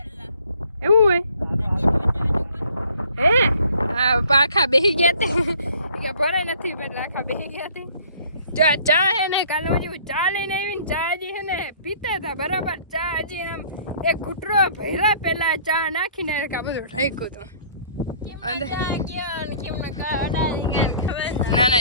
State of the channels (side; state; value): both; inverted; correlation -0.55